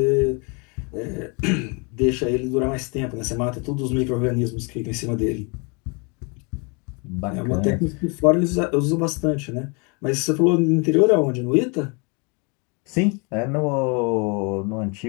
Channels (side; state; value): right; quieter; 32.6 dB